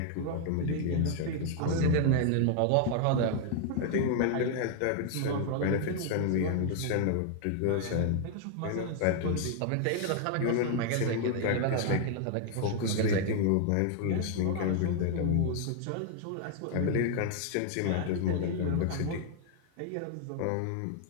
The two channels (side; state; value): both; different; correlation 0.00